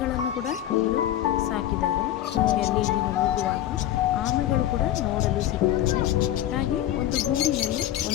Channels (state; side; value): quieter; right; 12.5 dB